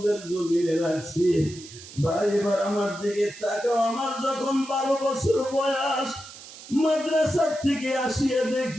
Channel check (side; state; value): right; noise; hiss, 16 dB below the sound